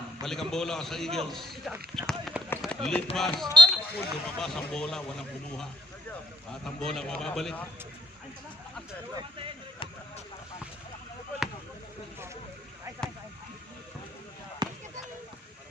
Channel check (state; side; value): normal; both; correlation 0.68